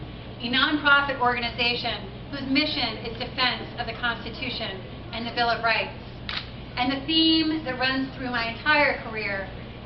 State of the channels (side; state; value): both; identical; correlation 1.00